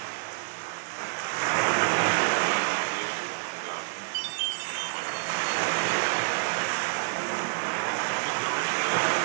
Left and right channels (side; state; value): left; silent; digital silence